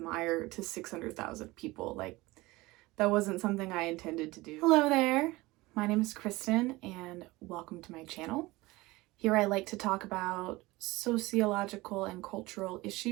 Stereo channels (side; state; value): left; quieter; 20.7 dB